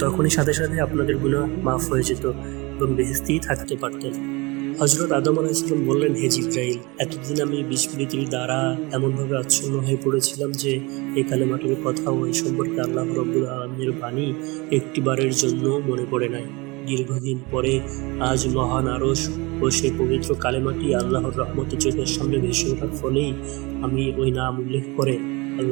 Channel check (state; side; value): quieter; left; 25.4 dB